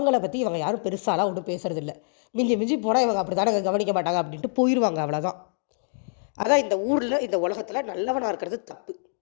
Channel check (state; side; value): silent; right; digital silence